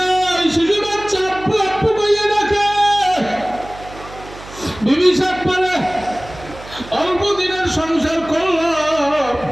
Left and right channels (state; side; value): noise; right; hum, 17 dB below the sound